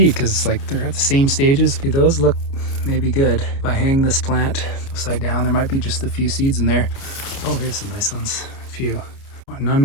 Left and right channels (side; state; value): right; late; 29 ms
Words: because like they're at the same stages. Those look maybe good. If I hang this plant upside down, there might be just a few seeds in there. Oh, here's some nice ones, a few.